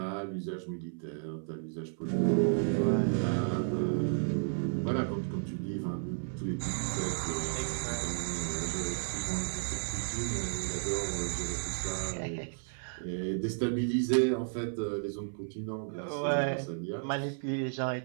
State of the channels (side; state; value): left; silent; 56 dB below the other